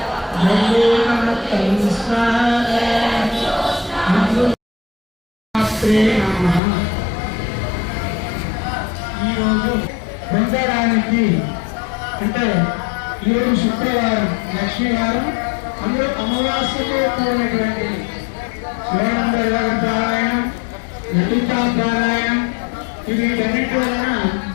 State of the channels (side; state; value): right; drops out; at 6.6 s